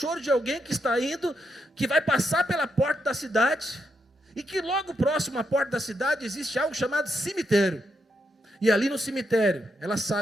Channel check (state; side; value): normal; both; correlation 0.81